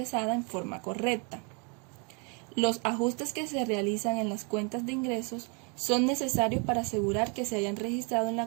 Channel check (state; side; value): quieter; left; 34.7 dB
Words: en forma correcta. Los ajustes que se realizan en las cuentas de ingresos son necesarios para asegurar que se hayan registrado en